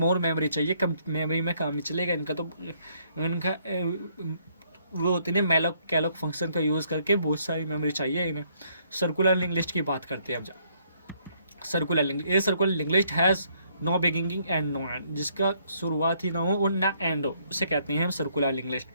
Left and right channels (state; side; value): inverted; both; correlation -0.68